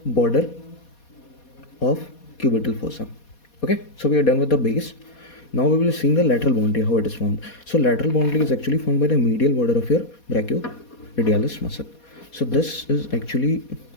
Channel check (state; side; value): late; right; 4.2 ms